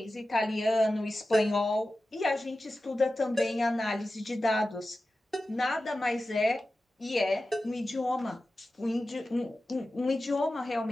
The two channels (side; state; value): both; normal; correlation 0.94